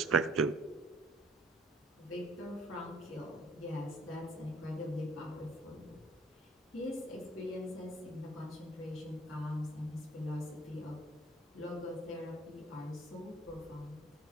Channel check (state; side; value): normal; both; correlation 0.58